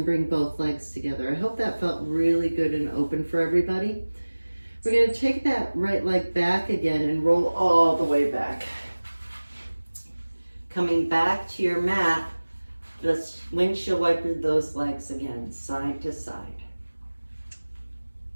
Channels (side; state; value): both; inverted; correlation -1.00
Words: bring both legs together. I hope that felt really good and open for everybody. We're going to take that right leg back again and roll all the way back. Coming back to your mat, let's windshield wiper those legs again, side to side.